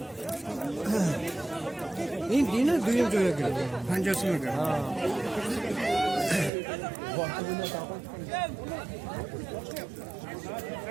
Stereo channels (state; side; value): drops out; left; at 6.5 s